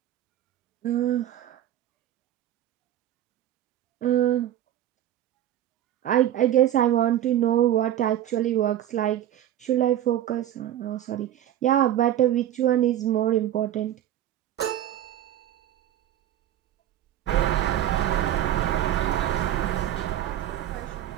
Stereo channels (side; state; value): left; quieter; 12.0 dB